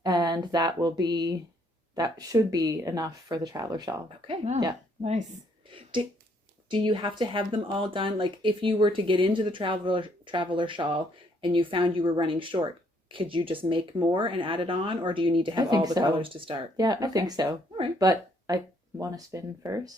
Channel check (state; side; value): normal; both; correlation 0.68